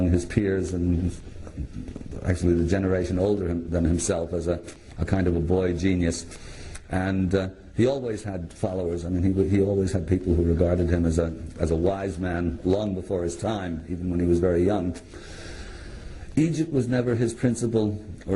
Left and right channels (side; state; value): both; identical; correlation 1.00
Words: his peers, and actually the generation older than himself, as a kind of a boy genius. And he always had followers. I mean, he always had people who regarded him as a wise man long before his time, even when he was very young. Egypt was never his principal